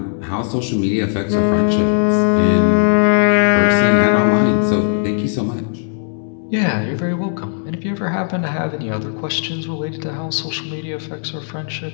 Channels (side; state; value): right; silent; 65 dB below the other